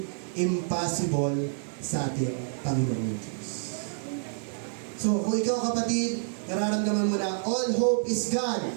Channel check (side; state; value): left; silent; 59 dB below the other